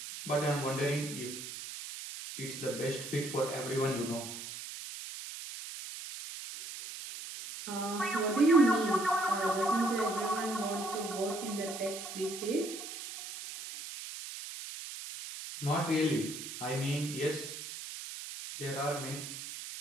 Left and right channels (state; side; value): noise; right; hiss, 9 dB below the sound